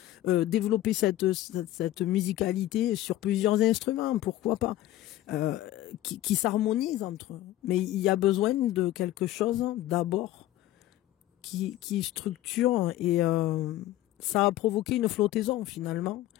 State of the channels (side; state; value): right; quieter; 14.6 dB